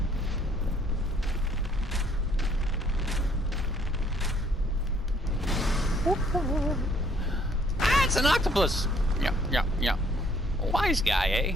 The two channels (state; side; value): normal; both; correlation 0.63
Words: Ah, it's an octopus. Yeah. Wise guy, eh?